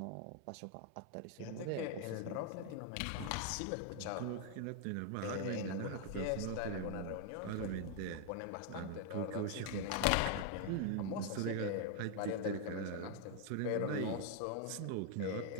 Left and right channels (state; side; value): different; both; correlation 0.00